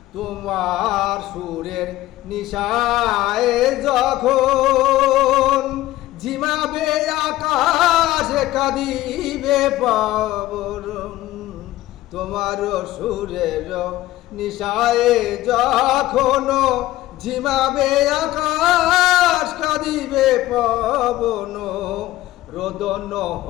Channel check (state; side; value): quieter; right; 16.1 dB